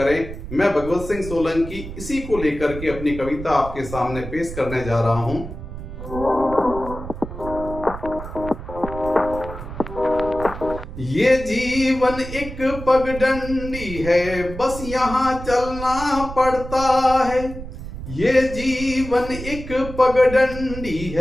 मैं भगवत सिंह सोलंकी इसी को लेकर के अपनी कविता आपके सामने पेश करने जा रहा हूं। ये जीवन एक पगडंडी है, बस यहाँ चलना पड़ता है। ये जीवन एक पगडंडी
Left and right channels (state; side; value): noise; right; rumble, 10 dB below the sound